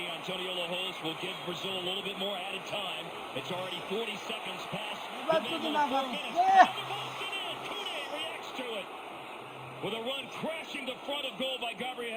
Antonio Lajos will give Brazil a little bit more added time. It's already 40 seconds past the minimum 4 minutes. And the ball's in. Kune reacts to it. With a run crashing to front of goal by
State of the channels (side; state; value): both; identical; correlation 1.00